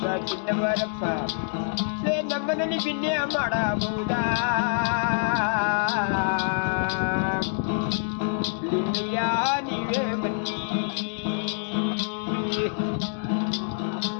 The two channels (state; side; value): silent; right; digital silence